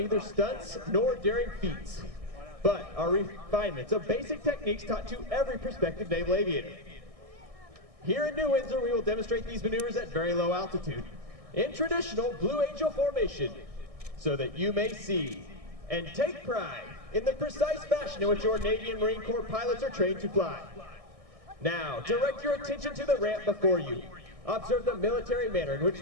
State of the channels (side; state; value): left; late; 1.6 ms